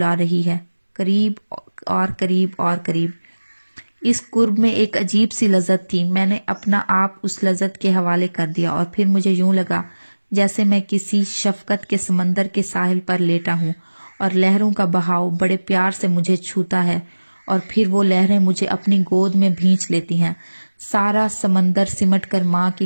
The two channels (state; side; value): inverted; both; correlation -1.00